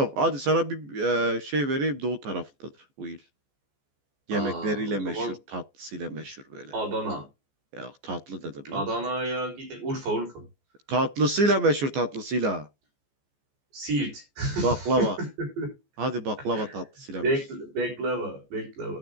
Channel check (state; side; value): late; left; 14 ms